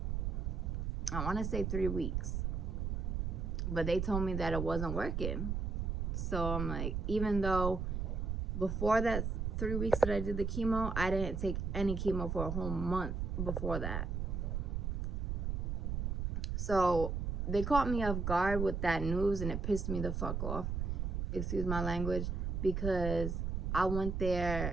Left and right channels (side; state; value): right; noise; rumble, 1 dB below the sound